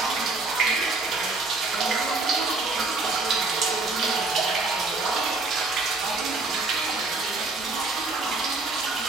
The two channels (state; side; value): quieter; left; 3.5 dB